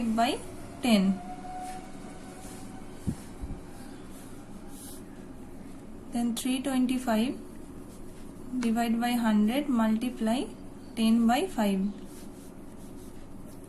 by 10. Then 325 divide by 100 multiply 10 by 5.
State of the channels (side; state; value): both; identical; correlation 1.00